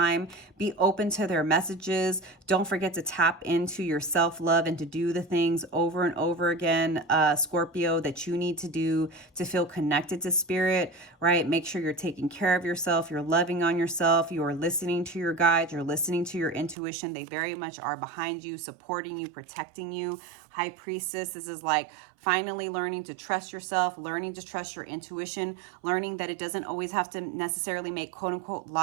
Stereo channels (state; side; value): drops out; left; at 16.8 s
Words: Be open to their messages. Don't forget to tap into your self-love and to do the things over and over again, Scorpio, that you need to do to feel connected to spirit, right? Make sure you're taking care of yourself. You're loving on yourself. You are listening to your guides. You're listening to your intuition. They very much are behind you, supporting you, protecting you. High Priestess, this is like finally learning to trust yourself, learning to trust your intuition, learning that it doesn't always have to necessarily make quote unquote